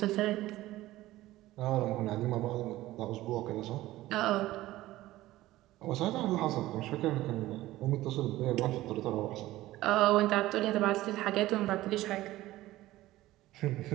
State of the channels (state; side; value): quieter; left; 16.5 dB